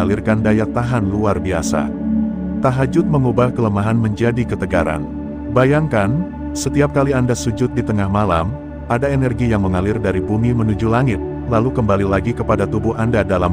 daya tahan luar biasa. Tahajud mengubah kelemahan menjadi ketegaran. Bayangkan, setiap kali Anda sujud di tengah malam, ada energi yang mengalir dari bumi menuju langit, lalu kembali lagi kepada tubuh Anda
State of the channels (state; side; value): identical; both; correlation 1.00